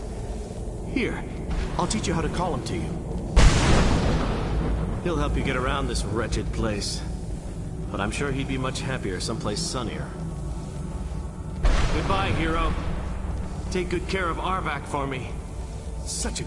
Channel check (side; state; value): both; identical; correlation 1.00